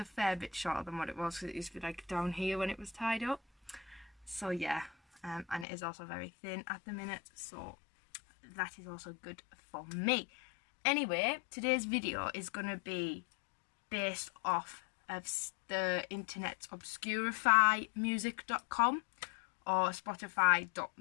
fair bit shorter than what it was, because it used to be like down here when it was tied up. So yeah. And it is also very thin at the minute, so that is also good for me. Anyway, today's video is going to be based off of the internet's Obscurify music.com or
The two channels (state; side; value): drops out; right; at 5.7 s